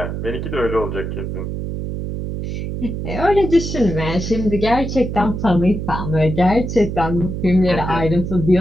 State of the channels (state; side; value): noise; right; hum, 5 dB below the sound